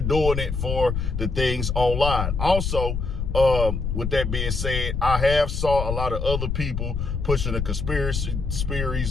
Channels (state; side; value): noise; left; rumble, 2 dB below the sound